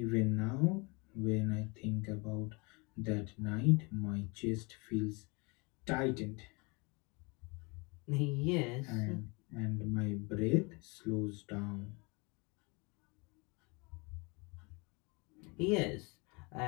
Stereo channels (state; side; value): quieter; right; 29.2 dB